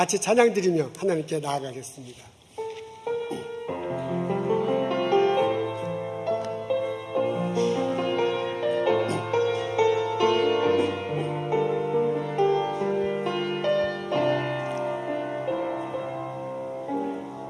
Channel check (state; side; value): identical; both; correlation 1.00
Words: 찬양드리며 하나님께 나아가겠습니다.